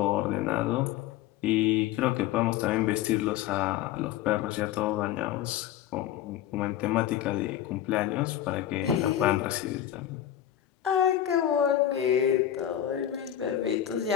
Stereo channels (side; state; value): right; quieter; 11.6 dB